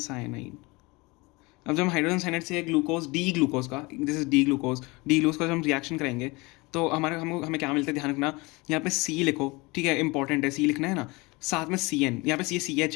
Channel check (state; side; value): quieter; right; 24.7 dB